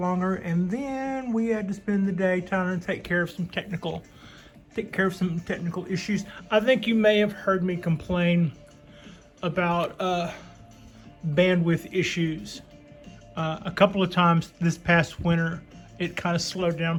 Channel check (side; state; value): both; identical; correlation 1.00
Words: and then we had to spend the day trying to take care of some technical issues. I think you may have heard me complain about bandwidth issues a couple of times this past winter. It kind of slowed